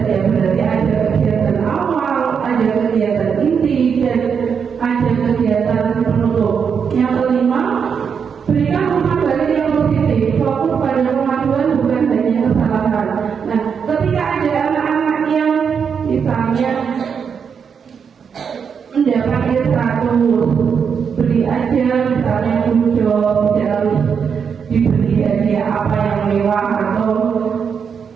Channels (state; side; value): quieter; left; 6.7 dB